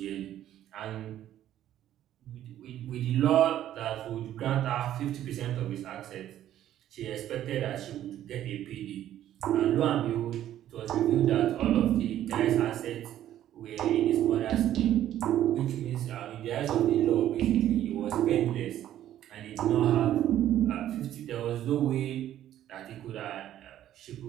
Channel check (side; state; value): left; quieter; 12.0 dB